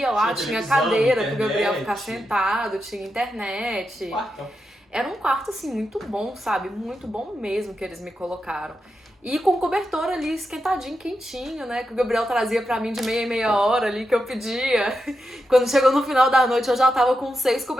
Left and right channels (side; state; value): both; normal; correlation 0.87